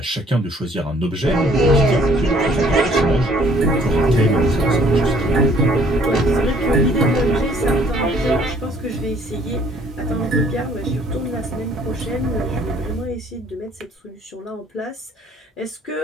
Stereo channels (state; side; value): normal; both; correlation 0.60